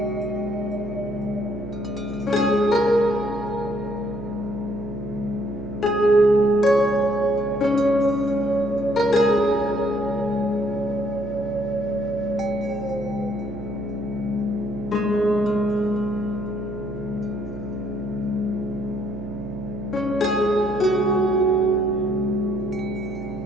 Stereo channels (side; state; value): right; noise; hum, 9 dB below the sound